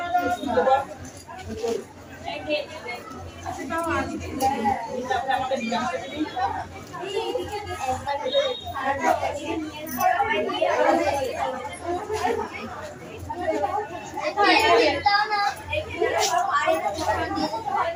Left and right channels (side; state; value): both; identical; correlation 1.00